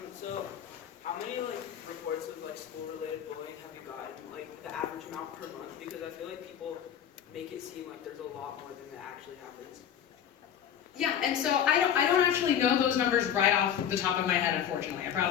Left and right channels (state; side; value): quieter; right; 9.2 dB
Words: So how many reports of school-related bullying have you gotten, the average amount per month? Because I feel like people make it seem like there's a lot more than that actually happens. Yeah, and so I don't actually know those numbers right off the top of my head, unfortunately. I